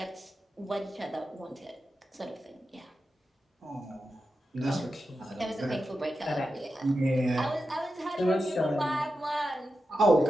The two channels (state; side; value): normal; both; correlation 0.90